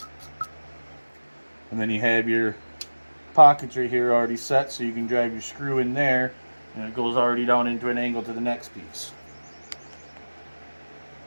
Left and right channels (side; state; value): both; inverted; correlation -1.00